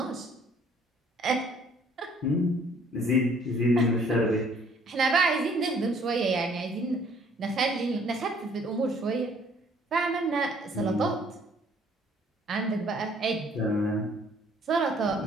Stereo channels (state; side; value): normal; both; correlation 0.60